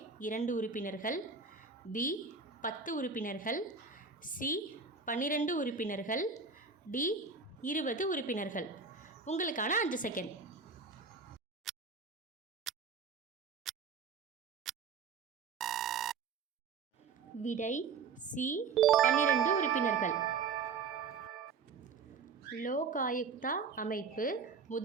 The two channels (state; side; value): quieter; left; 5.2 dB